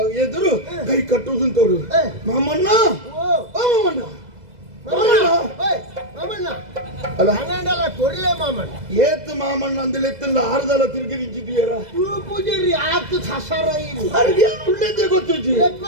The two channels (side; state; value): left; late; 2.0 ms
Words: ಎದುರು ಕೈ ಕಟ್ಟುವುದು ತೋರು ಮಾಮಣ್ಣ ಏತ್ ಮಾಮಣ್ಣ ಅಂದಲೆ ಎತ್ತಲ್ಲ ಆರ್ದಲ್ಲ ತಿರುಗಿ ನಿಂತಿದ್ದೀರ ಪೂಜಾರಿ ಆತು ಸಸಾರ ಉಳ್ಳೇದೇ ಗೊತ್ತಿಜ್ಜಿ